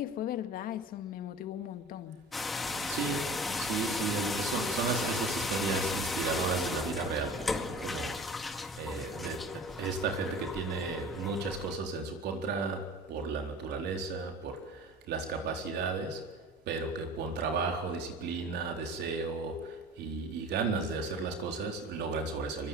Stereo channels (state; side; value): normal; both; correlation 0.41